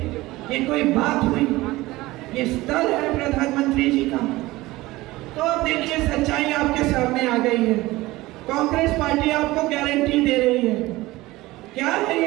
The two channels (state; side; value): quieter; left; 19.1 dB